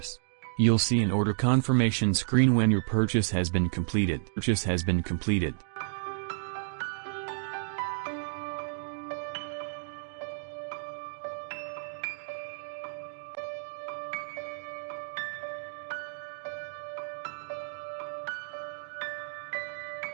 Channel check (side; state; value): left; silent; digital silence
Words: You'll see an order confirmation screen when your purchase has been completed.